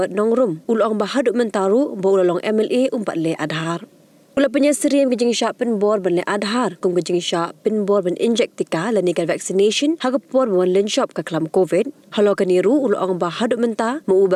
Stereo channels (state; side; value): identical; both; correlation 1.00